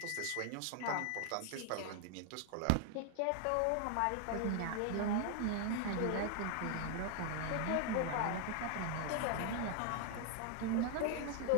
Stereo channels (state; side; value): different; both; correlation 0.00